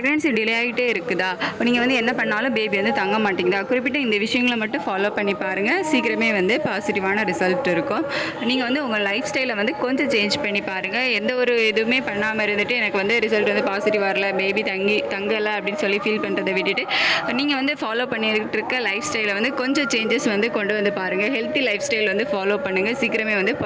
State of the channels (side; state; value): both; identical; correlation 1.00